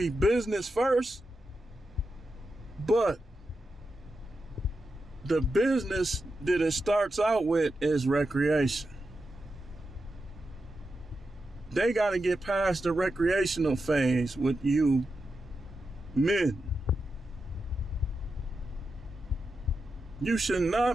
business first, but the business that it starts out with is recreation. They got to get past the recreational phase with you men. You should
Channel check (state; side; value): normal; both; correlation 0.88